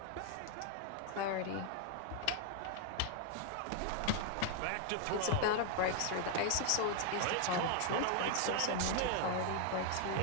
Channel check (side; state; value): both; different; correlation 0.00